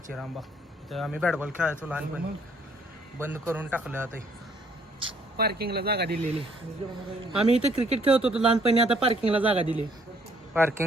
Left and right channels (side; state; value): both; normal; correlation 0.64